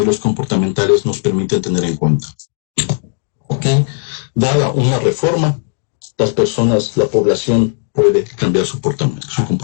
comportamentales nos permiten tener en cuenta. ¿Ok? Dada una reforma, la población puede cambiar su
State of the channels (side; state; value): right; silent; 65 dB below the other